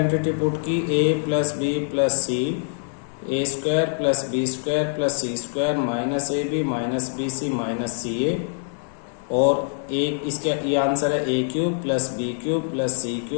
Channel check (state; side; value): silent; right; digital silence